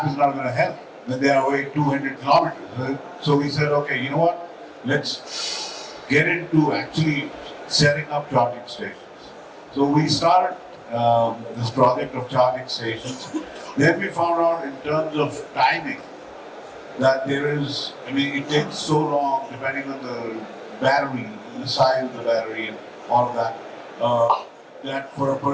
is not going to help when they are away 200 kilometers. So we said, okay, you know what? Let's get into actually setting up charging stations. So we started this project of charging stations. Then we found out in terms of timing that there is, I mean, it takes so long depending on the battery, the size of the battery and all of that, that for a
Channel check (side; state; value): both; identical; correlation 1.00